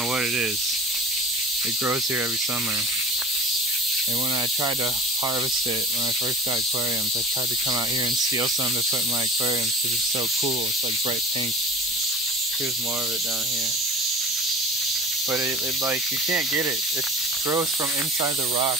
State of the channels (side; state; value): both; normal; correlation 0.38